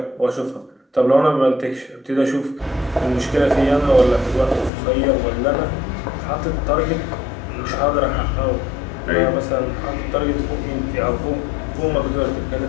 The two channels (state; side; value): drops out; right; at 4.7 s